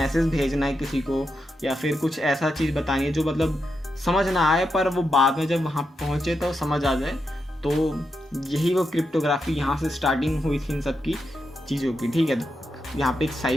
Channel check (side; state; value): both; normal; correlation 0.86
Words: भेजना है किसी को या फिर कुछ ऐसा चीज़ बतानी है जो मतलब समझ ना आए पर वो बाद में जब वहाँ पहुँचे तो समझ आ जाए। तो यही वो क्रिप्टोग्राफी यहाँ से स्टार्टिंग हुई थी इन सब की चीज़ों की, ठीक है। तो यहाँ पे एक